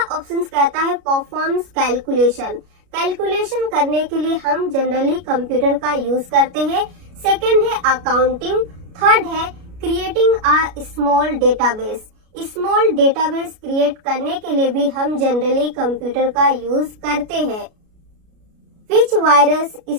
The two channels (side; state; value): left; late; 33 ms